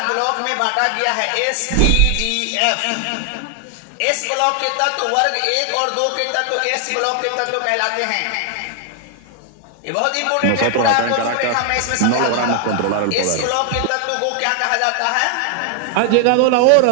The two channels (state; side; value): different; both; correlation 0.00